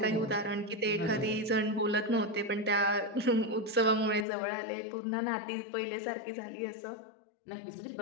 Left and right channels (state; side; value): drops out; right; at 4.2 s